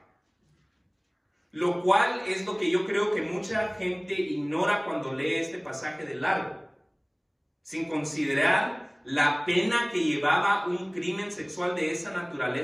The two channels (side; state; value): both; identical; correlation 1.00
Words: Lo cual es lo que yo creo que mucha gente ignora cuando lee este pasaje de largo, sin considerar la pena que llevaba un crimen sexual de esa